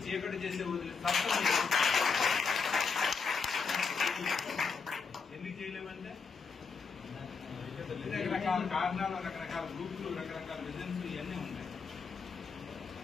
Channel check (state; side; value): quieter; right; 5.2 dB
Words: చీకటి చేసే వదిలి సత్తం. ఎందుకు చేయలేమంటే రకరకాల కారణాలు, రకరకాల గ్రూపులు, రకరకాల విజన్స్ ఇవన్నీ ఉంటాయి.